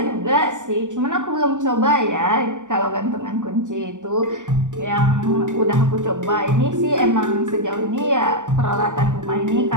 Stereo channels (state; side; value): late; left; 0.86 ms